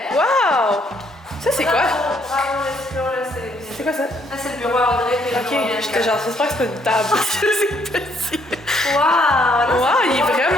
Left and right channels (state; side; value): normal; both; correlation 0.69